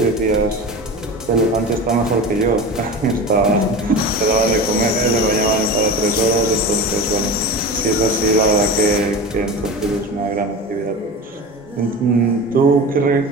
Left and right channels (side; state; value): both; normal; correlation 0.29